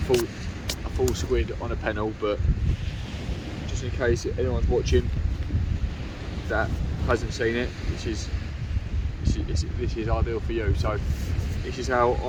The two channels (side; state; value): both; identical; correlation 1.00